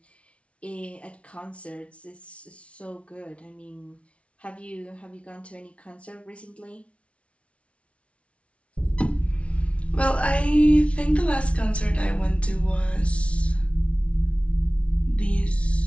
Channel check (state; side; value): late; right; 0.062 ms